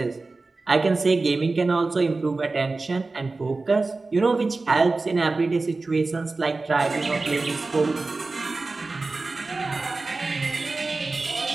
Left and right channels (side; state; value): left; quieter; 3.6 dB